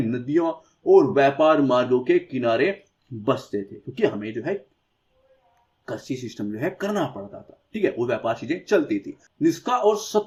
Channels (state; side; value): identical; both; correlation 1.00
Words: नदियों और व्यापार मार्गों के किनारे बसते थे, क्योंकि हमें जो है कृषि सिस्टम जो है करना पड़ता था, ठीक है, वो व्यापार चीजें चलती थी। निष्का और